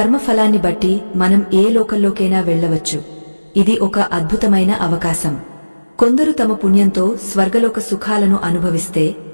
బట్టి మనం ఏ లోకంలోకైనా వెళ్లవచ్చు. ఇది ఒక అద్భుతమైన అవకాశం. కొందరు తమ పుణ్యంతో స్వర్గలోక సుఖాలను అనుభవిస్తే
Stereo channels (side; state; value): both; inverted; correlation -1.00